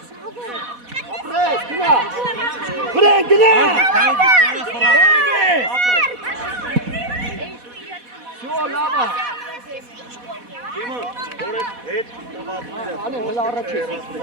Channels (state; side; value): late; left; 4.1 ms